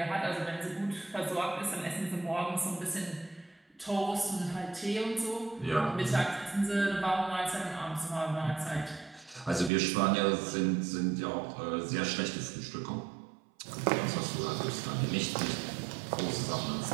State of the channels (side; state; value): left; drops out; at 9.7 s